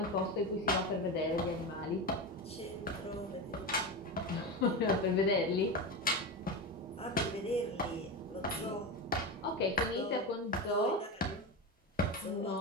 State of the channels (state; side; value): normal; both; correlation 0.19